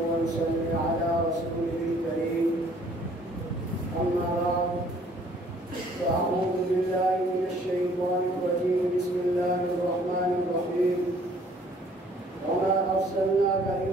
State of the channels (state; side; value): normal; both; correlation 0.59